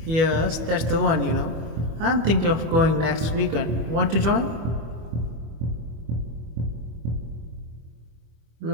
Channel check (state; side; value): late; left; 25 ms